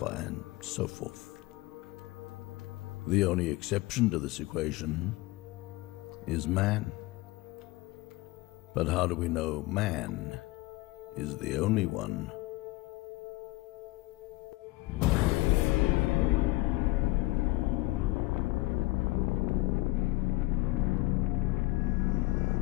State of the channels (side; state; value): right; quieter; 20.6 dB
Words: and so forth. The only exception to this equation is man. But how do we know man is the only one?